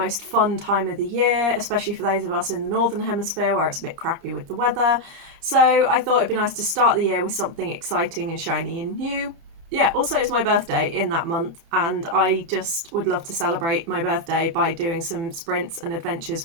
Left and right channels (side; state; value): left; late; 30 ms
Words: fun time of the year, especially for those of us in the Northern Hemisphere where it's a bit crappy with the weather. So I thought it'd be nice to start the year with something exciting and shiny and new. Yeah, also it's my birthday in that month, and I just would love to celebrate my birthday by doing some sprints and adventures